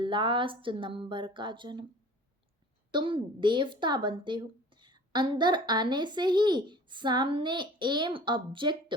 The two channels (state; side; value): normal; both; correlation 0.45